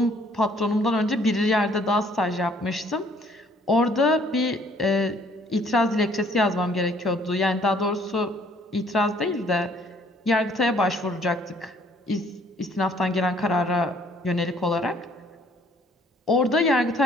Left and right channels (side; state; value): both; normal; correlation 0.61